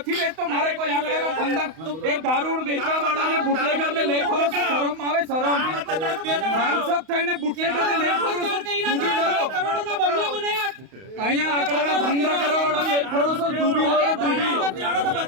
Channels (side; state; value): left; late; 31 ms